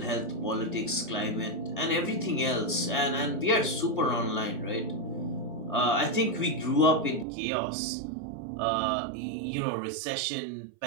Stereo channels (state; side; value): drops out; left; at 7.2 s